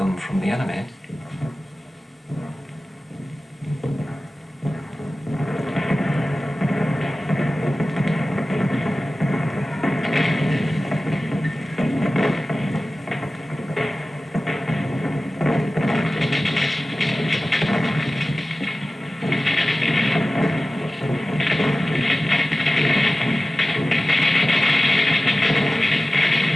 from the enemy.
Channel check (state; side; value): normal; both; correlation 0.96